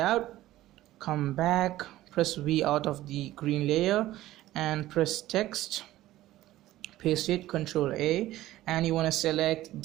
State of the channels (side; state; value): left; quieter; 15.4 dB